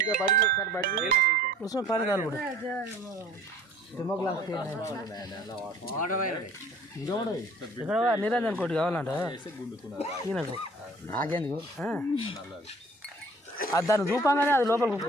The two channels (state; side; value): normal; both; correlation 0.51